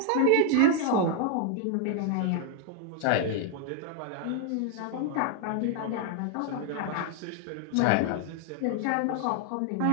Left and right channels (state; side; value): different; both; correlation 0.00